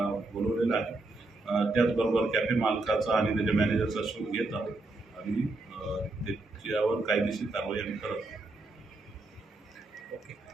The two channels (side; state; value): left; quieter; 3.1 dB